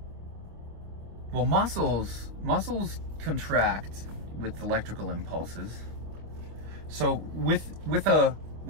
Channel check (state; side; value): late; left; 26 ms